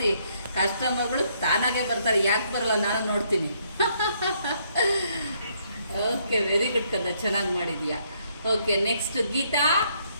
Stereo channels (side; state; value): both; inverted; correlation -0.70